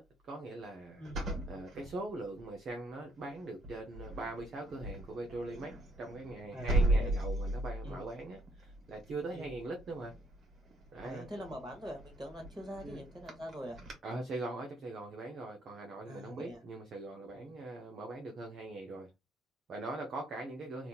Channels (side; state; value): both; normal; correlation 0.68